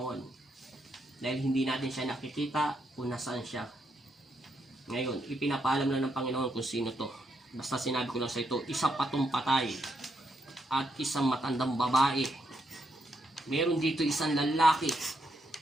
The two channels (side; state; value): both; normal; correlation 0.79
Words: Dahil hindi natin siya nakikita kung nasaan siya. Ngayon, ipinapaalam lang ng Panginoon kung sino to. Basta sinabi ko lang sa ito, isa patong patay at isang matandang babae. Meron dito isang lalaki.